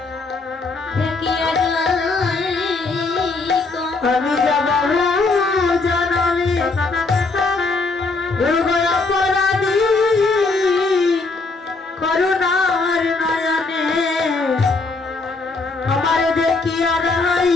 আমি যাব জানাবি গুরু গো অপরাধী করুণার নয়নে আমার দেখিয়া রাই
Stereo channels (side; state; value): right; quieter; 3.7 dB